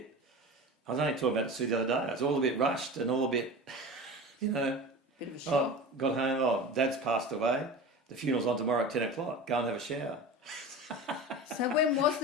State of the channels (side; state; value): both; normal; correlation 0.31